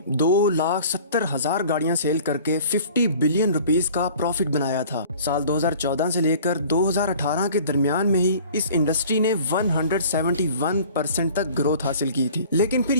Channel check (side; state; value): both; inverted; correlation -0.48